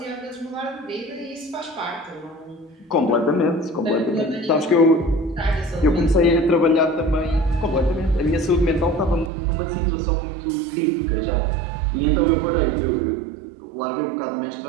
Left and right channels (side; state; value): left; drops out; at 9.3 s